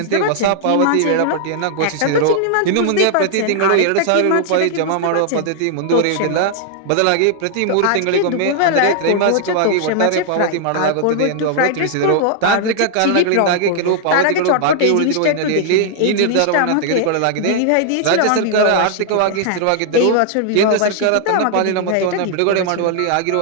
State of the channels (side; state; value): both; different; correlation 0.00